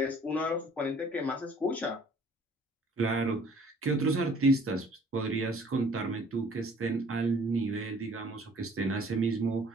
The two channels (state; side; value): normal; both; correlation 0.55